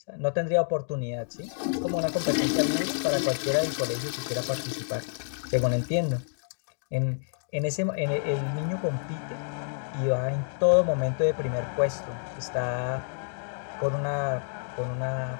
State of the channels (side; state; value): right; silent; digital silence